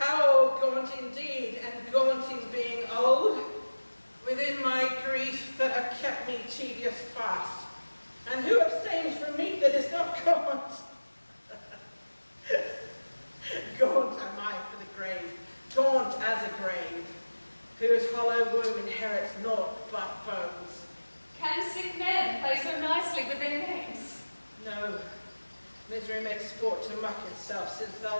gaunt indeed, and gaunt in being old, within my grief that have kept me tedious fast. And who abstains from meat that is not gaunt? Gaunt am I for the grave, gaunt as a grave, whose hollow womb inherits naught but bones. Can sick men play so nicely with their names? No, misery makes sport to mock itself, since thou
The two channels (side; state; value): both; inverted; correlation -1.00